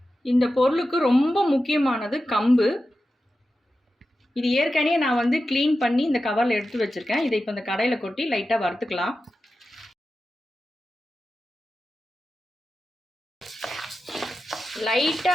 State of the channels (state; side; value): normal; both; correlation 0.92